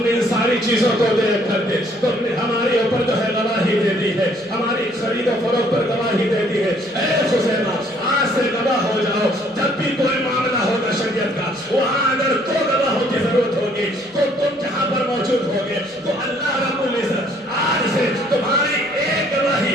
نے ان ساری چیزوں کو دیکھ کر کے تم نے ہمارے اوپر جو ہے گواہی دے دی ہے، ہماری خرید و فروخت پر گواہی دے دی ہے۔ اے خزیمہ، آج سے گواہ ہو جاؤ، جب بھی کوئی معاملہ ہوگا شریعت کا، وہاں اگر 2 گواہوں کی ضرورت ہوگی تو تم جہاں پر موجود ہوگے تو اللہ رب العزت آج سے تمہاری ایک گواہی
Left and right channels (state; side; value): normal; both; correlation 0.62